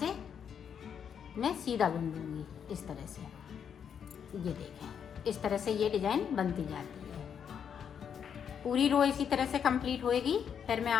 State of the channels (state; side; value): quieter; right; 7.8 dB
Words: मैं सीधा बुन दूंगी इस तरह से। ये देखें, इस तरह से ये डिजाइन बनती जाती है। पूरी रो इसी तरह से कंप्लीट होएगी, फिर मैं